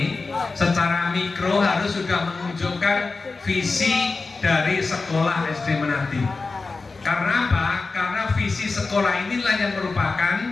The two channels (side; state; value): right; quieter; 4.0 dB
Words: secara mikro harus sudah menunjukkan visi dari sekolah SD Menadi. Karena apa? Karena visi sekolah inilah yang merupakan